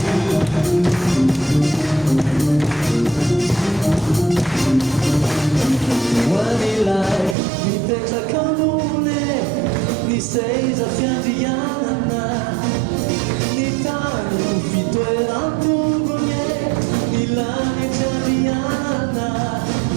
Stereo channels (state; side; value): drops out; left; at 7.4 s